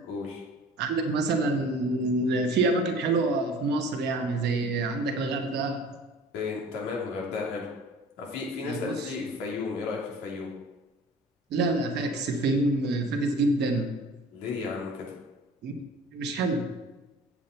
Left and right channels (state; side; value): normal; both; correlation 0.45